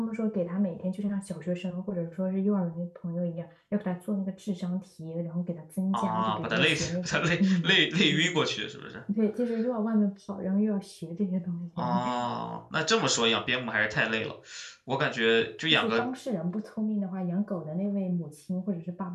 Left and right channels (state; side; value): identical; both; correlation 1.00